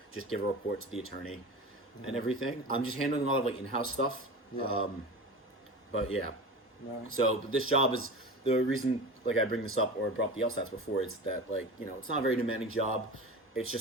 just give a report to the attorney and everything. I'm just handling a lot of in-house stuff. Yeah. But yeah. No. So this job is the reason I bring this up or brought up the LSATs before is that it's not a very demanding job. It's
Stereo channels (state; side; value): normal; both; correlation 0.32